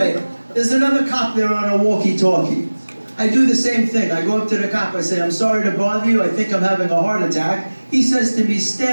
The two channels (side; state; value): both; inverted; correlation -1.00